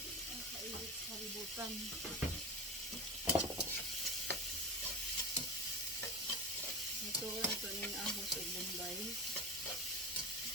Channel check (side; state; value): both; normal; correlation 0.27